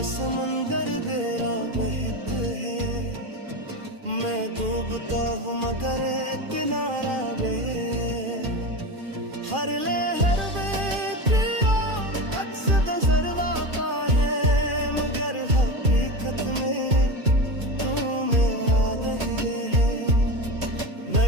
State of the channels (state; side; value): late; left; 2.4 ms